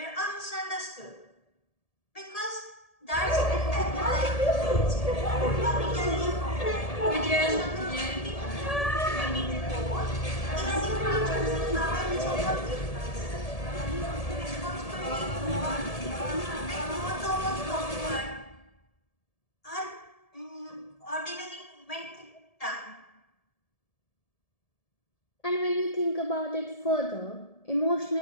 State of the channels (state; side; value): late; right; 1.7 ms